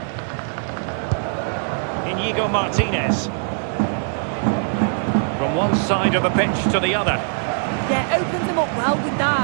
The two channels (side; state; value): left; silent; 65 dB below the other